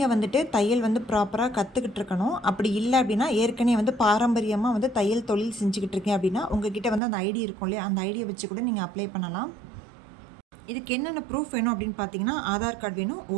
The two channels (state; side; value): drops out; left; at 7.0 s